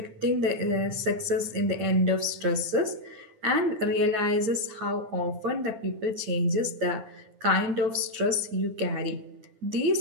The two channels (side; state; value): left; late; 9.5 ms